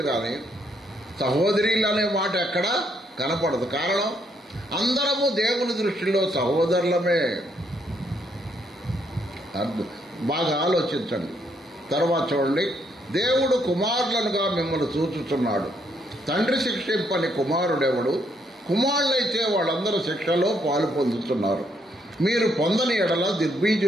కానీ సహోదరులు అనే మాట ఎక్కడ కనపడదు. కారణం, అందరము దేవుని దృష్టిలో సహోదరులమే. బాగా ఆలోచించండి. తర్వాత చూడండి, దేవుడు కుమారులనుగా మిమ్మల్ని చూచుచున్నాడు. తండ్రి శిక్షింపని కుమారుడెవడు? కుమారులైతే వాళ్ళందరూ శిక్షలో పాలు పొందుతున్నారు. మీరు పొందని ఎడల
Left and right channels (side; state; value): both; normal; correlation 0.73